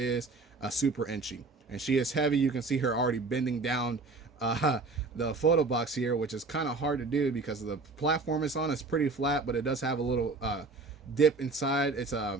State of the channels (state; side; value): quieter; left; 3.7 dB